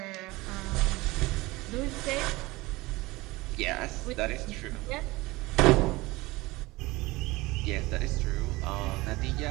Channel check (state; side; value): quieter; left; 21.2 dB